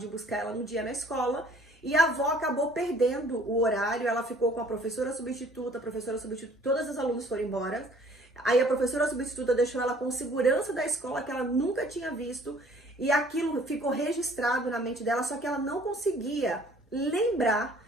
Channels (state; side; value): normal; both; correlation 0.56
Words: buscar ela no dia na escola e a avó acabou perdendo o horário, ela ficou com a professora substituta, todas as alunos foram embora. Aí a professora substituta deixou ela com segurança da escola que ela nunca tinha visto e aquilo ficou registrado na mente dela, só que ela não conseguia lembrar